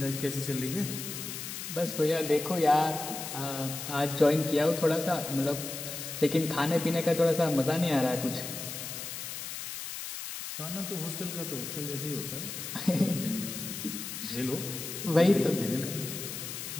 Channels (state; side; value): noise; left; hiss, 7 dB below the sound